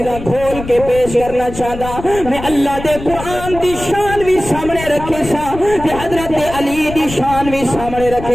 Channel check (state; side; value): noise; left; rumble, 11 dB below the sound